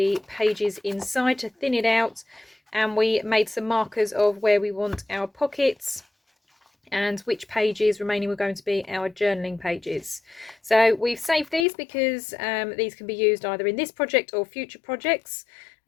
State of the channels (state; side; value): drops out; right; at 11.7 s